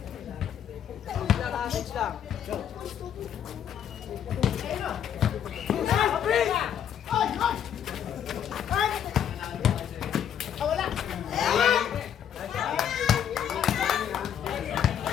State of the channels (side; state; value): right; quieter; 9.3 dB